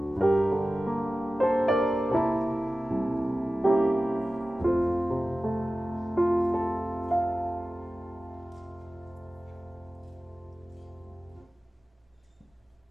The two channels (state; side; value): normal; both; correlation 0.95